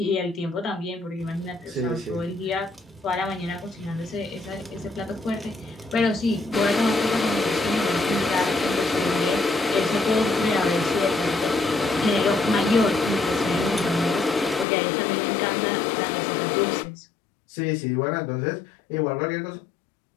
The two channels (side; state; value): right; drops out; at 14.7 s